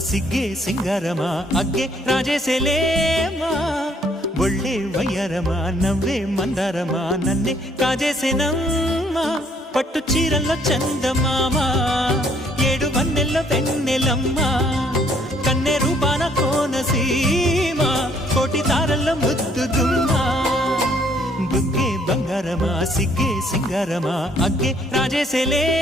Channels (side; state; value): both; normal; correlation 0.65